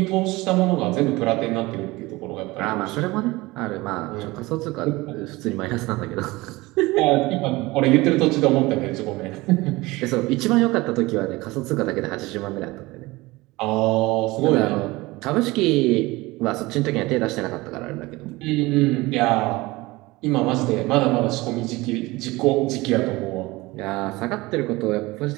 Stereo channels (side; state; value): left; quieter; 21.1 dB